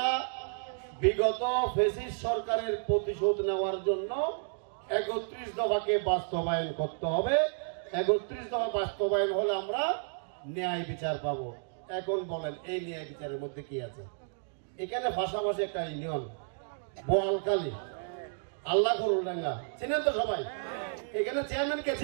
বিগত ফেসিস্ট সরকারের প্রতিশোধ নেওয়ার জন্য ৩১ দফাকে বাস্তবায়ন করতে হবে। ৩১ দফা বাস্তবায়ন হলে আমরা ন্যায় বিচার পাবো। এখন বলেন এই ন্যায় বিচারের মধ্যে কি আছে? এখানে ভাষাভাষী একটা ইউনিয়ন বোয়ালকালী আল্লাহ করুল্লাঙ্গা চিনেন তো সবাই? এখানে চেয়ারম্যান কে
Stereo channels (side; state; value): left; silent; digital silence